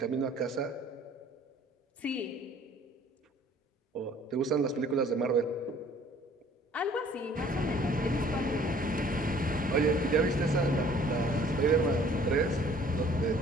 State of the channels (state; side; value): normal; both; correlation 0.55